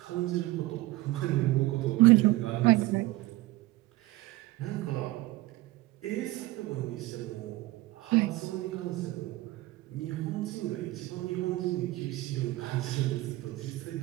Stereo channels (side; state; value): left; quieter; 18.6 dB